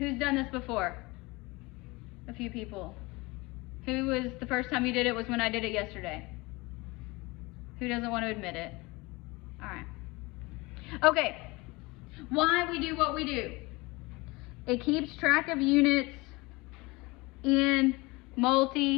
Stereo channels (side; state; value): right; quieter; 23.9 dB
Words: done this before? A few people. Who was the first time you did it was when I did it yesterday? Who doesn't want to admit it? All right. Okay. Why we do what we do. It keeps track of units in